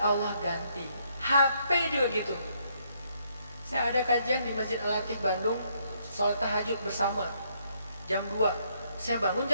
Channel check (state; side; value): inverted; both; correlation -0.72